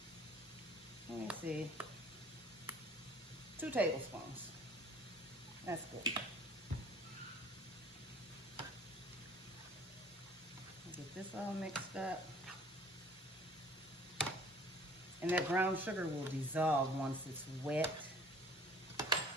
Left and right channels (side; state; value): both; normal; correlation 0.50